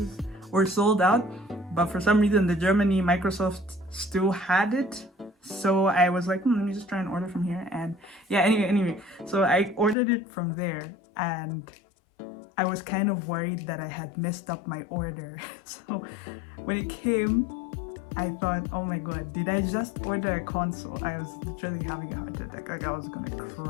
were sold out, but for some reason the Germany Microsoft still had it. So I was like, let me just try and order from here. And yeah, anyway, so I ordered it from there, and I was kind of worried that I had messed up my order. So when it came, I thought, oh my god, did I just order a console? I was literally having a heart attack. Like I was gonna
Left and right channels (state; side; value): drops out; right; at 10.0 s